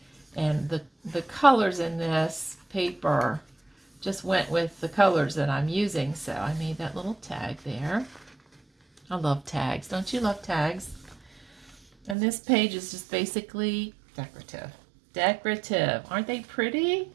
And the colors in this paper just went with the colors that I'm using. So I made that little tag there. I love tags. Don't you love tags? And this page is just basically decorative. Decorative. Aren't they pretty?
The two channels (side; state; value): left; drops out; at 12.2 s